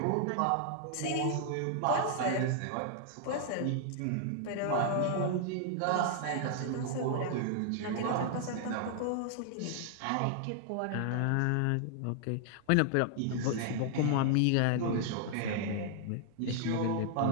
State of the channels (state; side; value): different; both; correlation -0.01